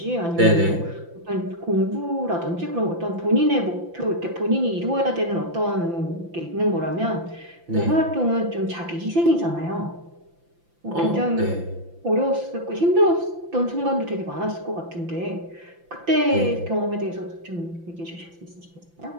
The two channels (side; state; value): left; late; 5.9 ms